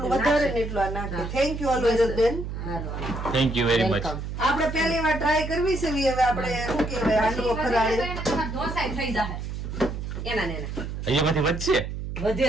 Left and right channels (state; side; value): noise; right; hum, 6 dB below the sound